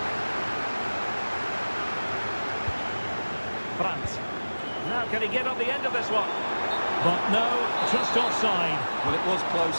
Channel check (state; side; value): inverted; both; correlation -1.00